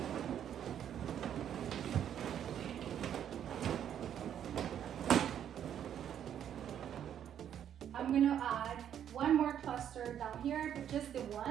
I'm gonna add one more cluster down here, but just the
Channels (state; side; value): quieter; left; 9.6 dB